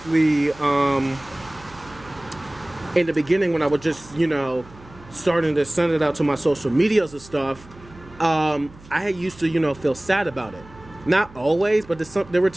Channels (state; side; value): noise; right; hum, 22 dB below the sound